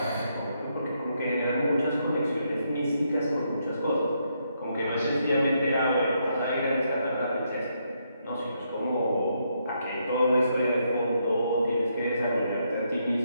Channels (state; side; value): inverted; both; correlation -0.77